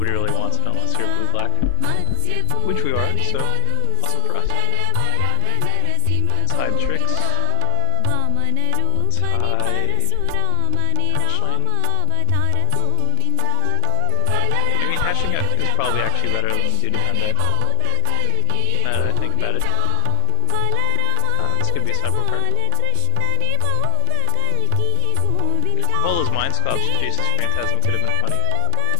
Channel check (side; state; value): both; different; correlation 0.00